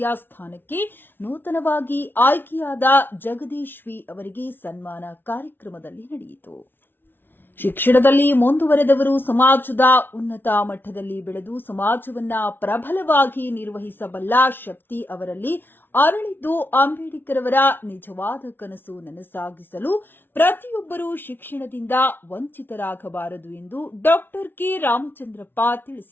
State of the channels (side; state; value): right; late; 0.10 ms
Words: ಸ್ಥಾನಕ್ಕೆ ನೂತನವಾಗಿ ಆಯ್ಕೆಯಾದ ಜಗದೀಶ್ ವಿ ಅವರಿಗೆ ಸನ್ಮಾನ ಕಾರ್ಯಕ್ರಮದಲ್ಲಿ ನಡೆಯಿತು. ಶಿಕ್ಷಣದಲ್ಲಿ ಮುಂದುವರೆದವರು ಸಮಾಜದ ಉನ್ನತ ಮಟ್ಟದಲ್ಲಿ ಬೆಳೆದು ಸಮಾಜವನ್ನ ಪ್ರಬಲವಾಗಿ ನಿರ್ವಹಿಸಬಲ್ಲ ಶಕ್ತಿ ಅವರಲ್ಲಿ ಅರಳಿದ್ದು ಅಂಬೇಡ್ಕರ್ ಅವರ ನಿಜವಾದ ಕನಸು ನನಸಾಗಿಸಲು ಪ್ರತಿಯೊಬ್ಬರೂ ಶಿಕ್ಷಣದಿಂದ ವಂಚಿತರಾಗಬಾರದು ಎಂದು ಡಾ ಕೆ ರಾಮಚಂದ್ರಪ್ಪ